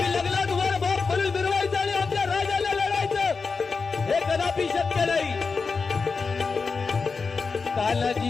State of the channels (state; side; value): quieter; right; 4.7 dB